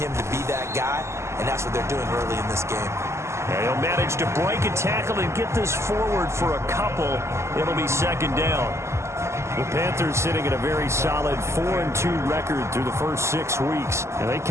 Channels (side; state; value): left; late; 0.13 ms